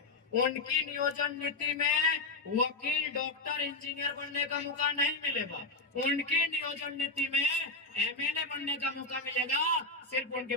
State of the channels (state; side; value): quieter; right; 3.2 dB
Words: उनकी नियोजन नीति में वकील, डॉक्टर, इंजीनियर बनने का मौका नहीं मिलेगा, उनकी नियोजन नीति में एमएलए बनने का मौका मिलेगा, सिर्फ